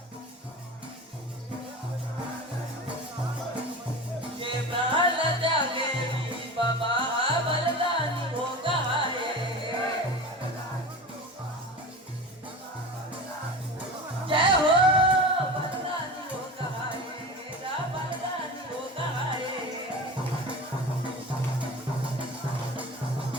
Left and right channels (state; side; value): normal; both; correlation 0.31